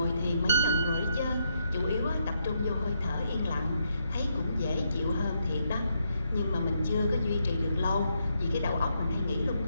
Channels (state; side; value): inverted; both; correlation -0.78